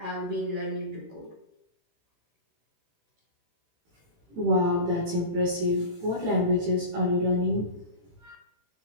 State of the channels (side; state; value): left; late; 18 ms